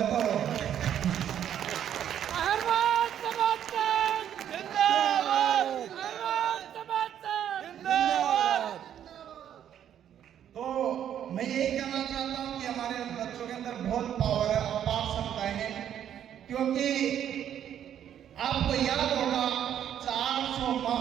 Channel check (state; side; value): quieter; left; 10.0 dB